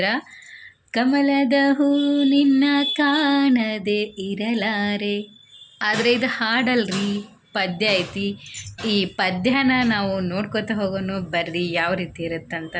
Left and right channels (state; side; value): identical; both; correlation 1.00